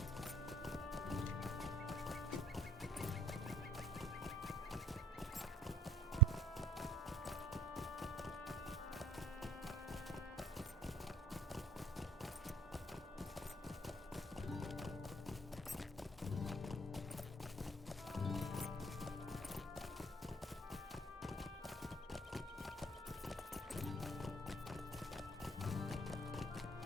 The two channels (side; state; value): both; normal; correlation 0.50